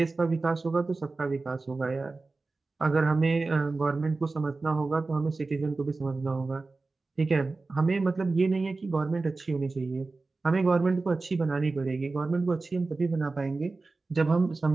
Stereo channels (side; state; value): left; quieter; 3.6 dB